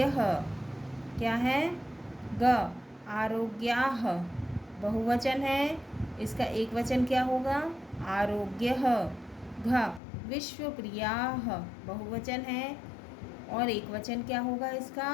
क्या है, ग आरोग्याः, बहुवचन है, इसका एक वचन क्या होगा, आरोग्यः। घ विश्वप्रियाः, बहुवचन है और एक वचन क्या होगा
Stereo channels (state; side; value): drops out; right; at 10.0 s